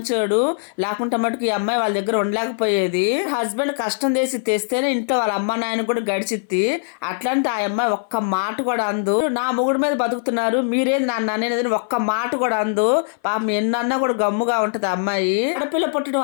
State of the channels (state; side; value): silent; right; 58 dB below the other